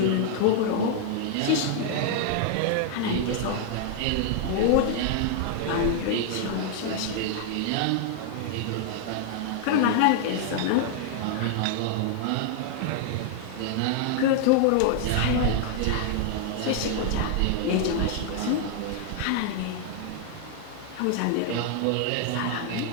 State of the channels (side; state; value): both; different; correlation 0.00